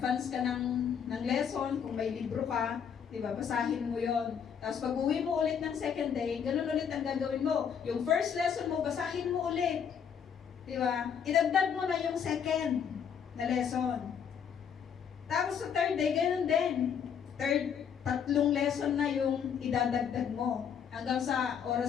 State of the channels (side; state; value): right; quieter; 7.7 dB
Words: ka ng lesson, kung may libro ka, diba? Basahin mo yon. Tapos pag uwi mo ulit ng second day, ganun ulit ang gagawin mo. Yung first lesson mo, basahin mo ulit. Diba? Idagdag mo na yung second na lesson. Tapos sa third day, ganun din. Tatlong lesson na yung idadagdag mo. Hanggang sa